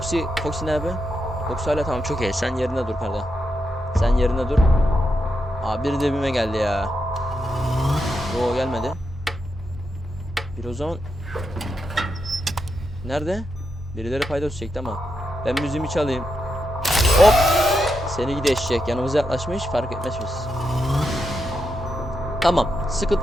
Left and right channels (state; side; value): normal; both; correlation 0.85